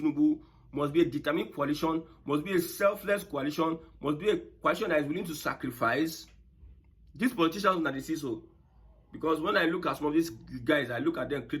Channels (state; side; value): identical; both; correlation 1.00